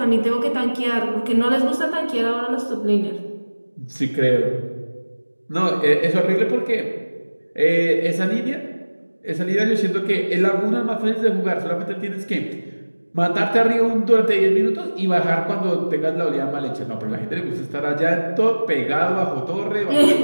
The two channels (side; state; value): both; inverted; correlation -1.00